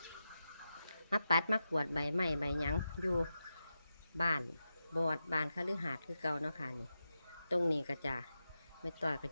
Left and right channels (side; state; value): both; inverted; correlation -0.89